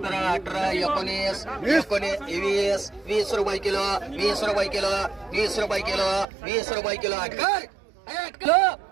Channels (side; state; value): left; drops out; at 6.2 s